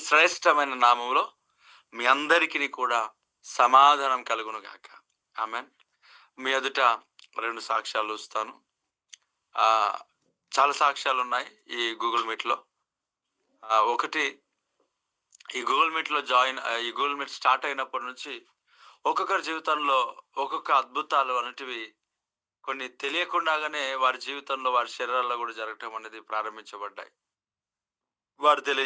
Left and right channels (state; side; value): identical; both; correlation 1.00